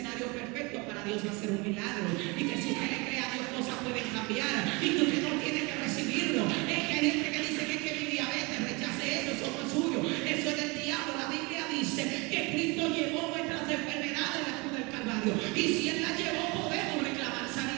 perfecto para Dios hacer un milagro. Y que si usted le cree a Dios, cosas pueden cambiar. Y que usted no tiene que recibirlo. Es que hay gente que dice que mi diabetes, rechace eso no es suyo. Eso es del diablo. La Biblia dice que Cristo llevó nuestras enfermedades en la cruz del Calvario. Y si Él las llevó, podemos reclamar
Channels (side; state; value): left; quieter; 27.2 dB